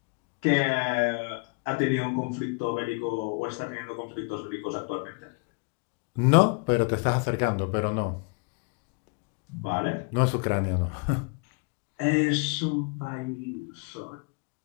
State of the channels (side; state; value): right; quieter; 34.1 dB